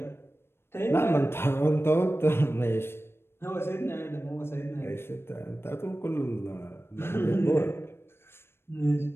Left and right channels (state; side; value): late; right; 0.12 ms